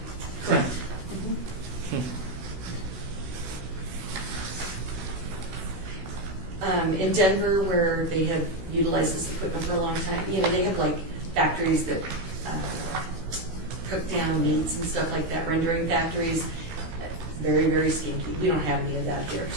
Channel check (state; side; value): late; left; 16 ms